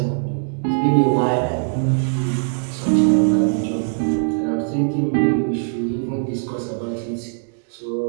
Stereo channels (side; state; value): left; silent; digital silence